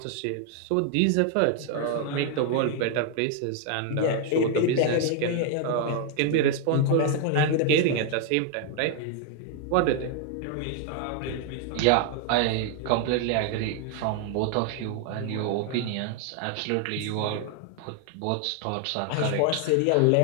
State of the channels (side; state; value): both; different; correlation 0.00